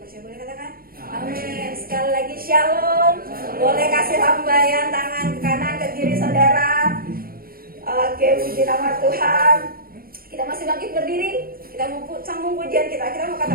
percaya boleh katakan amin. Sekali lagi shalom. Boleh kasih lambaian tangan ke kanan ke kiri saudara. Oke, puji nama Tuhan. Kita masih bangkit berdiri. Kita mau sambung pujian kita. Kita mau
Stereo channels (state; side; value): late; left; 0.43 ms